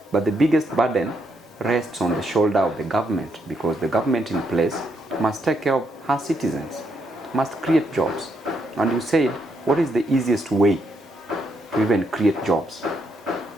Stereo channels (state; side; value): normal; both; correlation 0.77